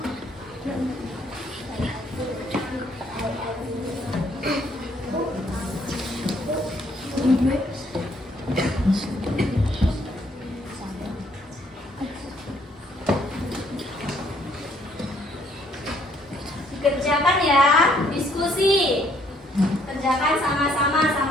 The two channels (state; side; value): normal; both; correlation 0.66